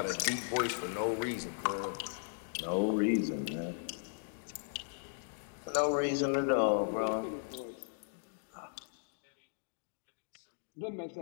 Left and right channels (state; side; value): silent; right; digital silence